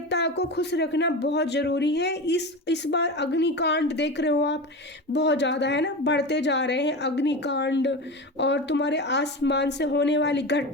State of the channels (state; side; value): normal; both; correlation 0.25